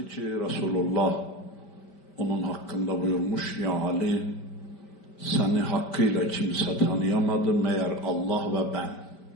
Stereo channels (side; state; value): right; late; 5.1 ms